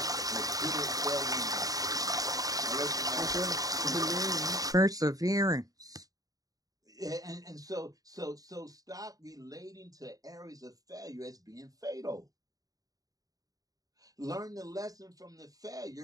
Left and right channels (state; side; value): late; left; 0.18 ms